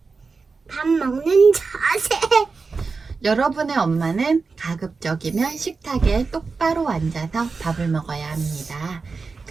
밥 먹는 자세. 여러분의 엄마는 가급적이면 식탁에 똑바로 앉아서 밥을 먹어야 합니다.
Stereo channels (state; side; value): quieter; left; 4.5 dB